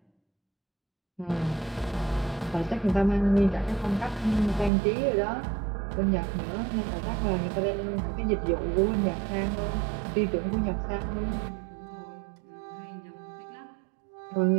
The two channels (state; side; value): drops out; left; at 4.7 s